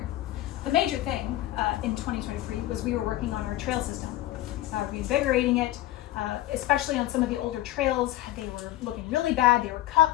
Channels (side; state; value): right; quieter; 15.1 dB